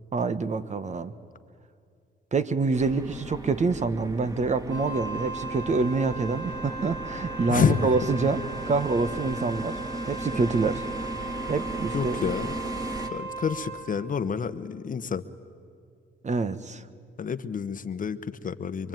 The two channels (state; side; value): normal; both; correlation 0.53